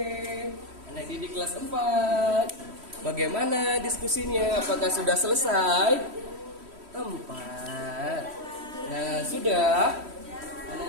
Anak didik kelas 4. Bagaimana diskusinya? Apakah sudah selesai? 4. Nah, sudah.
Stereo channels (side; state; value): left; late; 3.1 ms